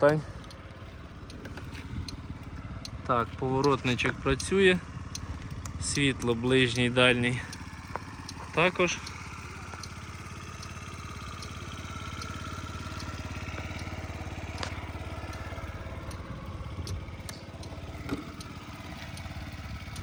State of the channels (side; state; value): both; identical; correlation 1.00